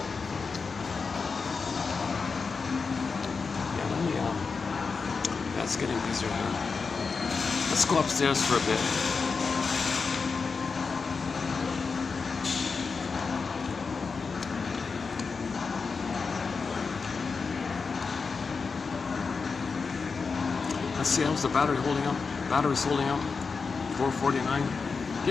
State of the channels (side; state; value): right; quieter; 4.9 dB